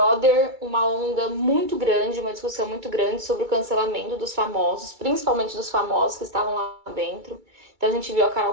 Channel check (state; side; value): late; left; 2.3 ms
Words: uma onda muito grande, uma discussão muito grande sobre o cancelamento dos famosos, principalmente dos famosos que estavam lá dentro. Então a gente viu a